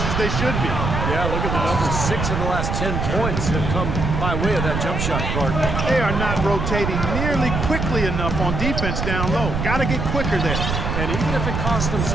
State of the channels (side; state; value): right; noise; rumble, 2 dB below the sound